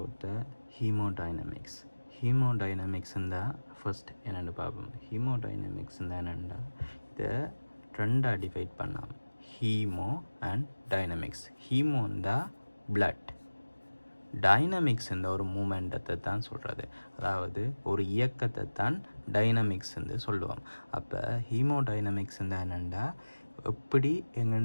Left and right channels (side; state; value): both; inverted; correlation -1.00